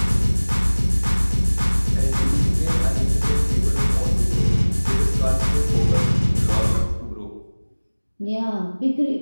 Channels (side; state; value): both; inverted; correlation -1.00